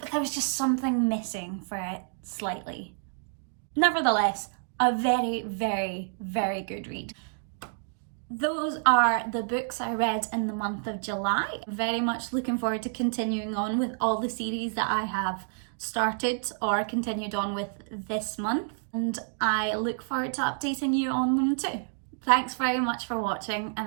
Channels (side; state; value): left; silent; digital silence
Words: there was just something missing for it slightly. Nevertheless, a very, very, very good read. Those are the books I read in the month of July. Very much looking forward to continuing on with all the series that I have started or continued on with this month, and I look forward to updating you on them too. Thanks very much for watching, and